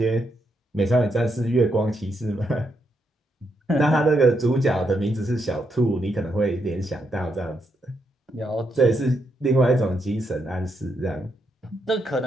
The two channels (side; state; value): both; normal; correlation 0.80